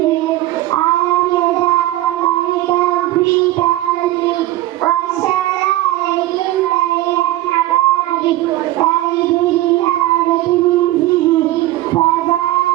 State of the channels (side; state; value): left; quieter; 16.1 dB